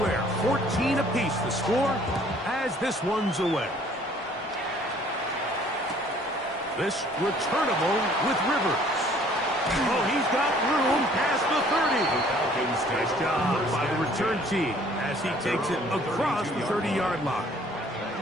14 apiece the score as this one's away. This returnable with Rivers. Oh, he's got room past the 30. Nice job by the return team as he takes it across the 30-yard line.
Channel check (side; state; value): both; normal; correlation 0.57